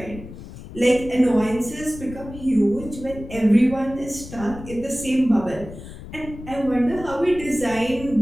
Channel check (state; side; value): noise; left; rumble, 14 dB below the sound